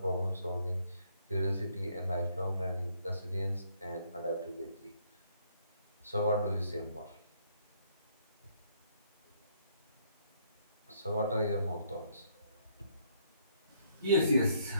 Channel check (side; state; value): both; inverted; correlation -0.69